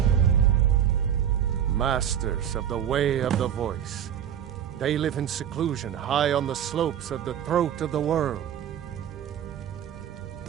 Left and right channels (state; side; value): quieter; left; 9.6 dB